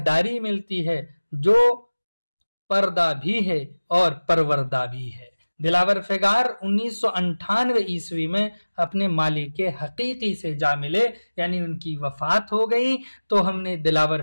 मिलती है, जो पर्दा भी है और परवरदा भी है। दिलावर फिगार 1998 ईस्वी में अपने मालिक हकीकी से जा मिले, यानी उनकी वफात हो गई। तो हमने दिलावर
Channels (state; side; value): inverted; both; correlation -1.00